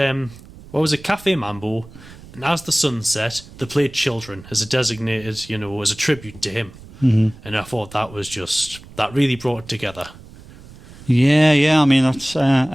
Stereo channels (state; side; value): noise; right; rumble, 19 dB below the sound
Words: Mambo, and as the sun set, they played Children as a designated, as a tribute to him. And I thought that really brought it together. Yeah. I mean, that's